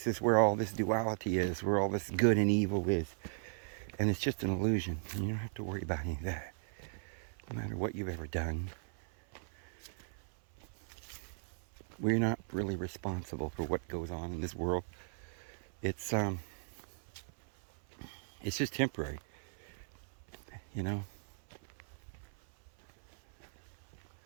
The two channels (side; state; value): left; silent; 53 dB below the other